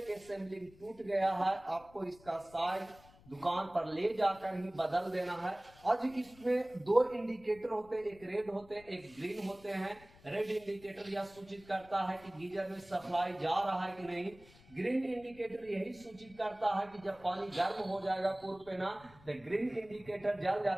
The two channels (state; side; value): noise; left; rumble, 24 dB below the sound